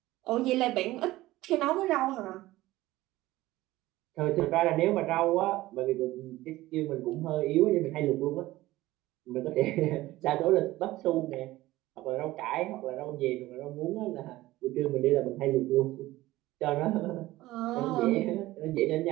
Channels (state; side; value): quieter; left; 17.3 dB